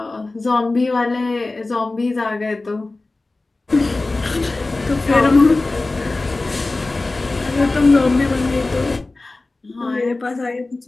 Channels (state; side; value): quieter; right; 3.2 dB